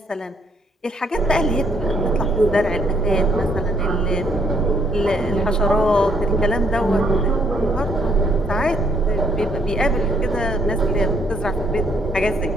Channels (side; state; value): both; normal; correlation 0.68